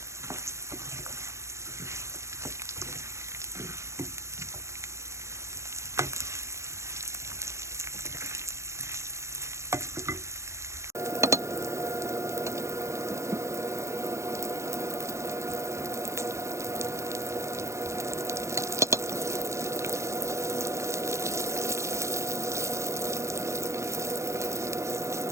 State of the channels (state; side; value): late; left; 0.14 ms